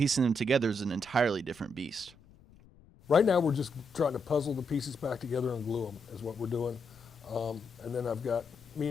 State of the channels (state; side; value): noise; left; rumble, 25 dB below the sound